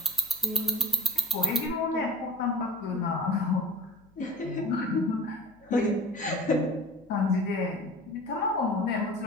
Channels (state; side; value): noise; left; hum, 29 dB below the sound